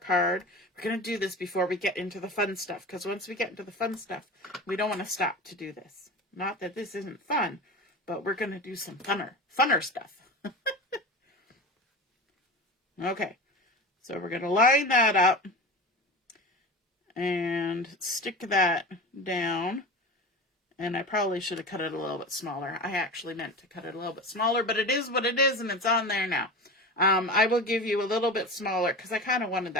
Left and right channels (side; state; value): both; normal; correlation 0.30